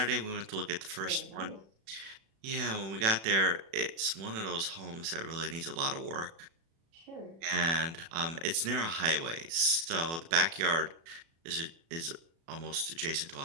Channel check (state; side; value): late; left; 36 ms